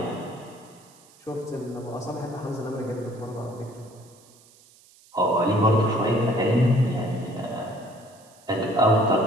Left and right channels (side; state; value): right; noise; hiss, 27 dB below the sound